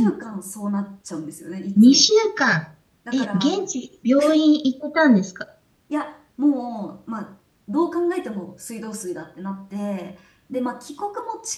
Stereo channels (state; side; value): identical; both; correlation 1.00